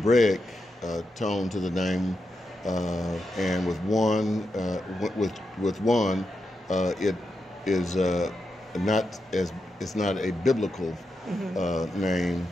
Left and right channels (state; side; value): normal; both; correlation 0.86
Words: tone to the name, and with one, it is it's not a biblical name.